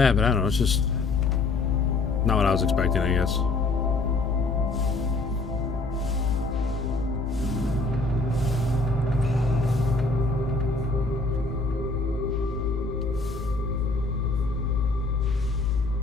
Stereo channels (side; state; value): right; quieter; 3.5 dB